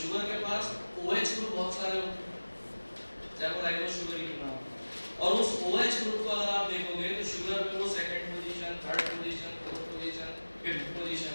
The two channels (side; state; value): both; inverted; correlation -1.00